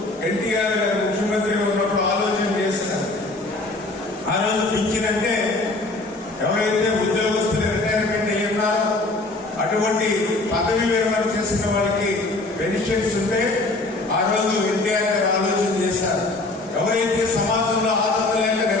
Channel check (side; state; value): right; quieter; 3.0 dB